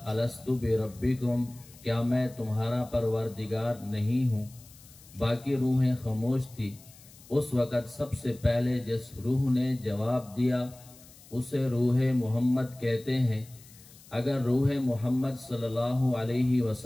الست بربکم، کیا میں تمہارا پروردگار نہیں ہوں؟ باقی روحیں خاموش تھی۔ اس وقت سب سے پہلے جس روح نے جواب دیا اسے روح محمد کہتے ہیں۔ اگر روح محمد صلی اللہ علیہ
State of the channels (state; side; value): noise; left; hiss, 23 dB below the sound